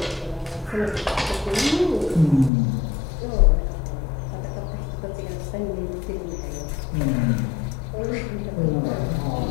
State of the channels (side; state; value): right; drops out; at 2.5 s